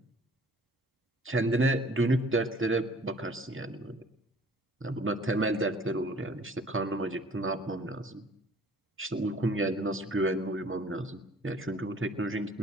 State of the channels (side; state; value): both; normal; correlation 0.53